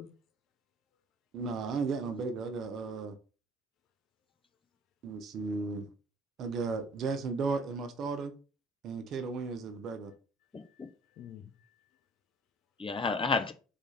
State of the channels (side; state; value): both; normal; correlation 0.51